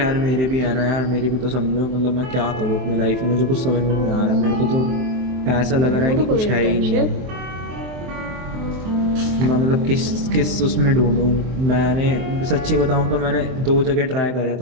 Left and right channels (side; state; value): left; late; 23 ms